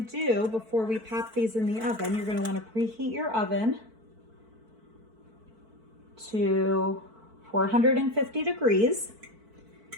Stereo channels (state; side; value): late; left; 4.5 ms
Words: before we pop these in the oven, you're going to want to preheat your oven to 450 degrees.